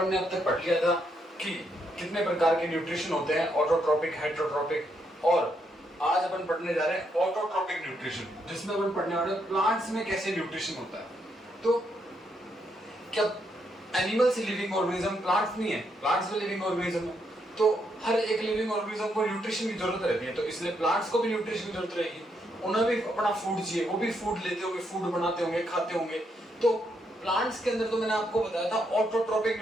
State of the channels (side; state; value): both; normal; correlation 0.77